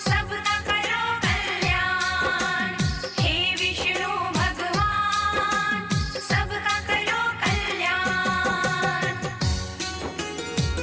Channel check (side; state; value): both; identical; correlation 1.00